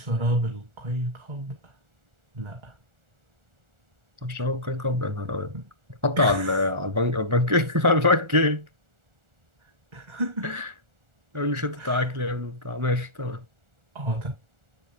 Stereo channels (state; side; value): late; left; 1.4 ms